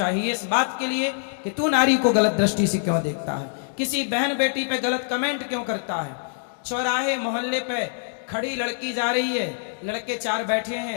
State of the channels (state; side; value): silent; right; digital silence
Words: इस बात के लिए कि तू नारी को गलत दृष्टि से क्यों देखता है, किसी बहन बेटी पे गलत कमेंट क्यों करता है। चौराहे मोहल्ले पे खड़ी लड़की जा रही है, लड़के 4 बैठे